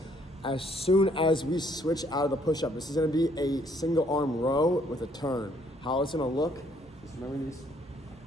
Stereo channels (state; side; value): normal; both; correlation 0.66